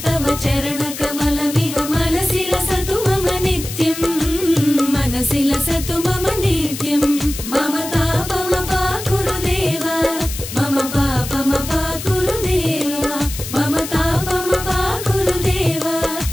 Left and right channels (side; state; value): left; noise; hiss, 9 dB below the sound